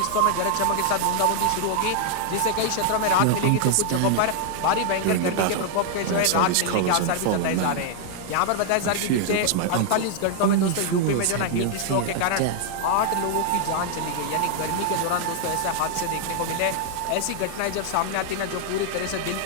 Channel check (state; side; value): different; both; correlation 0.00